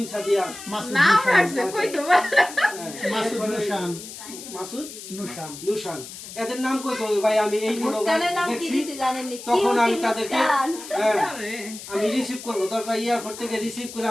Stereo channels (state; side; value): noise; left; hiss, 13 dB below the sound